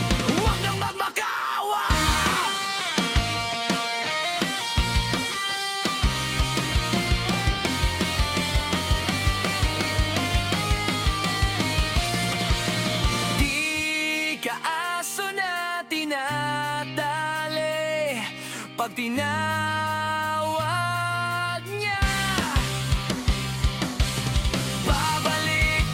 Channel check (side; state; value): both; identical; correlation 1.00